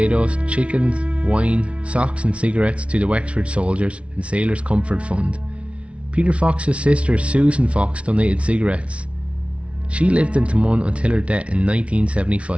chickens, wine, socks and cigarettes to the Wexford Soldiers and Sailors Comfort Fund. Peter Fox's sister Susan Fox donated cigarettes. She lived in Taghmon until her death in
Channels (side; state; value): left; late; 0.061 ms